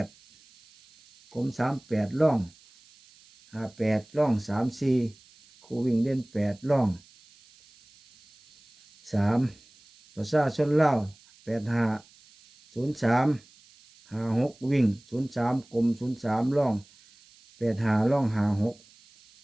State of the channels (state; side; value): noise; right; hiss, 28 dB below the sound